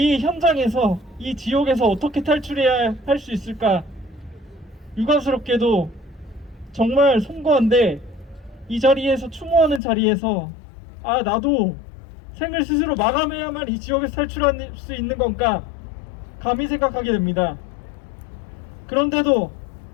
현장에서, 이 지옥에서 어떻게 탈출해야 할 수 있을까? 유감스럽게도 정말 송구한데 이 자리에서 추모하는 자리에서 나도 생을 스스로 마감해야만 이 지옥에서 탈출할 수 있는 건가 감히 생각하게 됩니다. 그런데도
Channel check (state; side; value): drops out; right; at 9.8 s